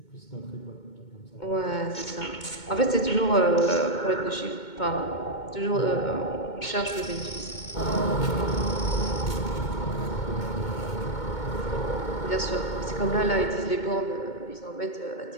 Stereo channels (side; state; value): right; late; 2.2 ms